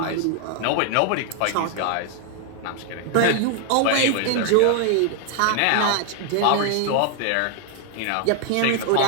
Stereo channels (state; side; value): different; both; correlation 0.00